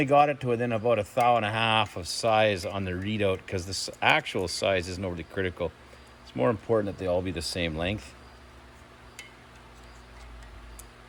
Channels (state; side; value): identical; both; correlation 1.00